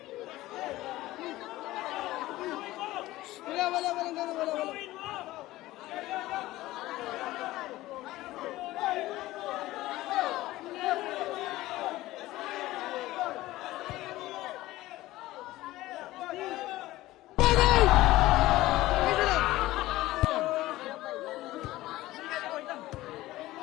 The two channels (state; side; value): quieter; right; 17.0 dB